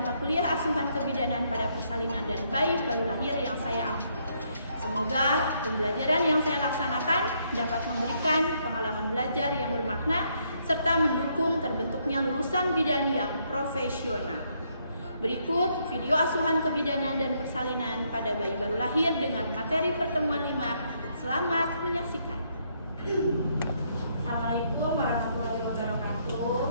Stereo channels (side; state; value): both; inverted; correlation -0.73